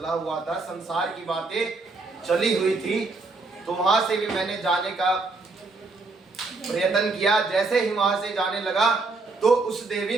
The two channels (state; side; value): quieter; left; 3.6 dB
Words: हुआ था, संसार की बातें चली हुई थी। तो वहां से भी मैंने जाने का प्रयत्न किया। जैसे ही वहां से जाने लगा तो उस देवी